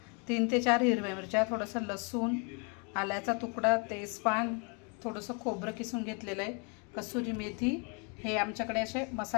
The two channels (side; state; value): right; quieter; 35.1 dB